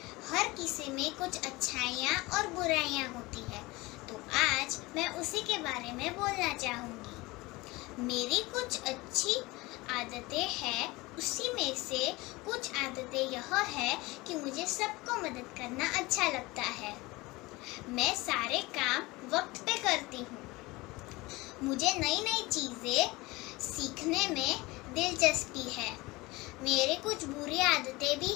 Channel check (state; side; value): quieter; right; 22.0 dB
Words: हर किसी में कुछ अच्छाइयाँ और बुराइयाँ होती है, तो आज मैं उसी के बारे में बोलना चाहूँगी। मेरी कुछ अच्छी आदतें हैं, उसी में से कुछ आदतें यह है कि मुझे सबको मदद करना अच्छा लगता है। मैं सारे काम वक्त पे करती हूँ। मुझे नई नई चीज़ें सीखने में दिलचस्पी है। मेरे कुछ बुरी आदतें भी